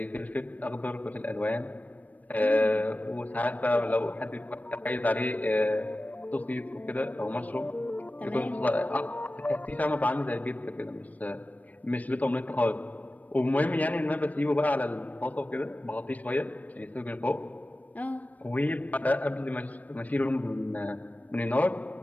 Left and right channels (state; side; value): late; right; 0.074 ms